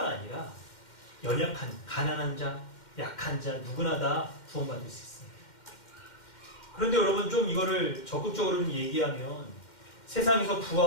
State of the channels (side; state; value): right; late; 2.1 ms